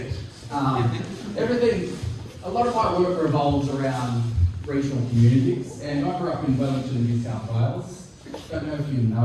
Everything. A lot of my work revolves around regional communities, and I grew up in Wellington, New South Wales. Don't know if you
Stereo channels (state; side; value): identical; both; correlation 1.00